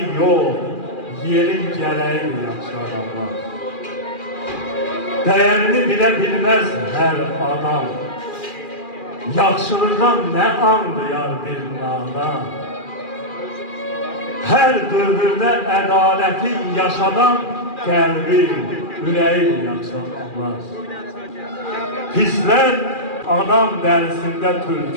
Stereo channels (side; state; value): right; late; 2.4 ms